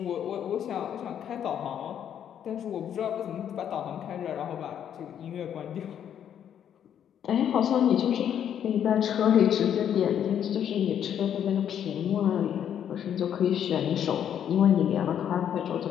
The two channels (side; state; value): right; quieter; 9.4 dB